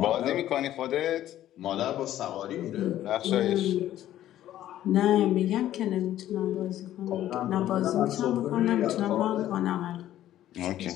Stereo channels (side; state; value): right; quieter; 12.8 dB